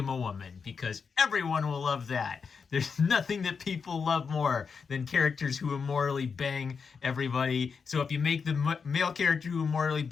a woman, because everyone will love that. There's nothing that people love more than characters who immorally bang everybody. So if you make the male character who immorally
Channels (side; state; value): right; quieter; 5.7 dB